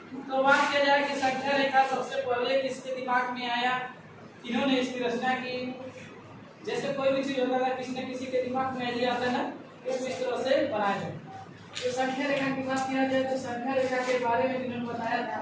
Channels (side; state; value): both; identical; correlation 1.00